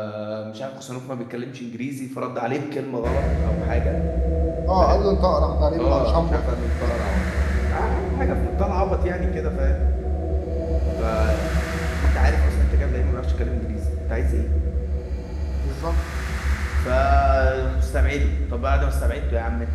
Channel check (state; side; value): identical; both; correlation 1.00